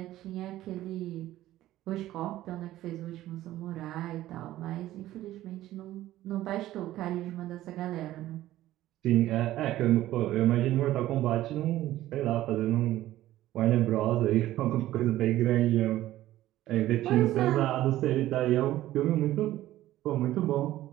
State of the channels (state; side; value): quieter; left; 14.7 dB